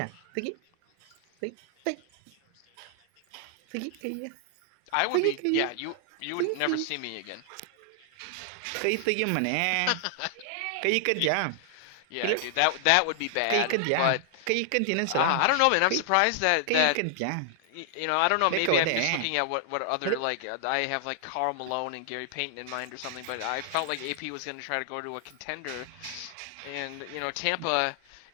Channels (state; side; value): different; both; correlation 0.00